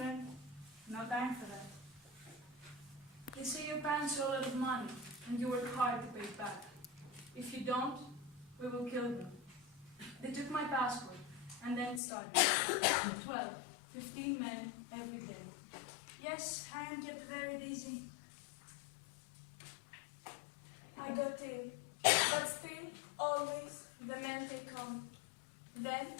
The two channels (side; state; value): right; drops out; at 12.0 s